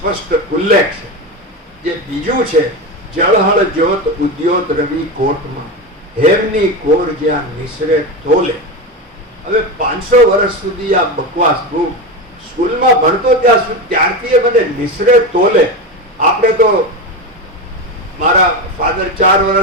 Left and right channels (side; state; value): both; normal; correlation 0.19